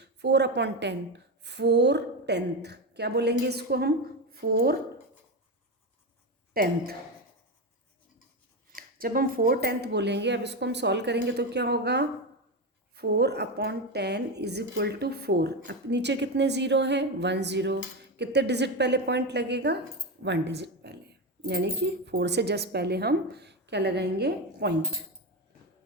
4/10, 4/10 क्या बोलेंगे इसको हम, 4/10। जब हम 4/10 बोलेंगे, अब इसको हम सॉल्व करेंगे तो क्या होगा, 4/10 = 4। अब नीचे कितने ज़ीरो हैं, 1 0, कितने डिजिट पहले पॉइंट लगेगा, 1 डिजिट पहले, यानी कि 4 से जस्ट पहले हम क्या लगाएंगे, पॉइंट।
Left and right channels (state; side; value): normal; both; correlation 0.14